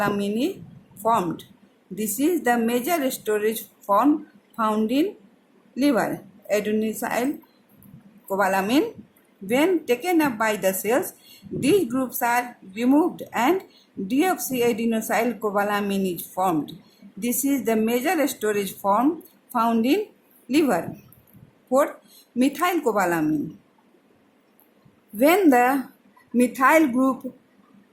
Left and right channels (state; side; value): identical; both; correlation 1.00